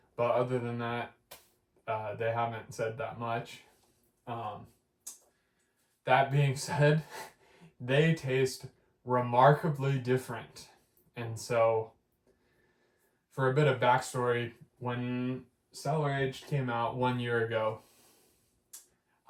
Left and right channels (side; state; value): both; identical; correlation 1.00